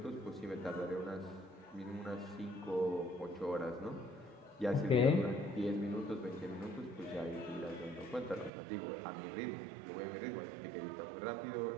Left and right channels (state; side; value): drops out; left; at 8.5 s